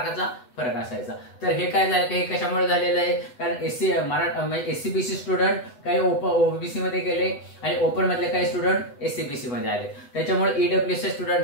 फरक असायचा। तर हे काय झालं, हे कशामुळे झालेलं आहे, कारण SC/BC स्टुडंट काही ओबीसी मध्ये गेले आणि ओपन मधले काही स्टुडंट SC/BC मध्ये आले, त्याच्यामुळे EWS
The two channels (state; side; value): late; right; 8.1 ms